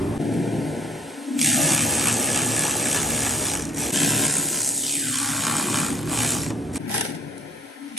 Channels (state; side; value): normal; both; correlation 0.56